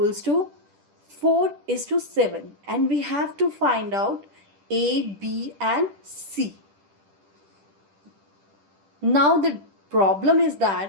to 4 is to 7. And we have to find out A, B and C. Now the problem is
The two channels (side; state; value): left; late; 10 ms